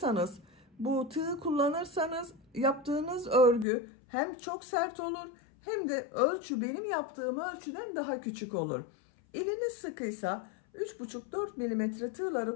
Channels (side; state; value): right; drops out; at 3.7 s